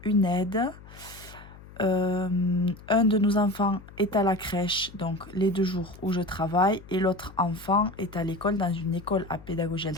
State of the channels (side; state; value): left; noise; hum, 19 dB below the sound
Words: une aide. Un de nos enfants est à la crèche, donc les 2 jours où je travaille, et l'autre enfant est à l'école, dans une école à pédagogie